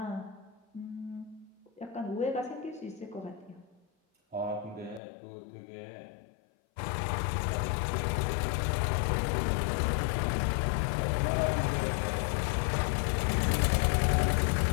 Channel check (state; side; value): drops out; right; at 5.0 s